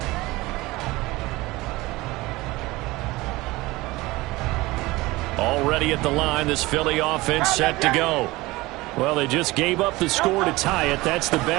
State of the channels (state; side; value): quieter; left; 20.6 dB